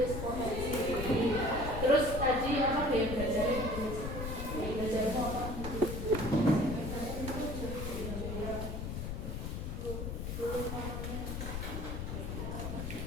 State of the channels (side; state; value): left; noise; rumble, 4 dB below the sound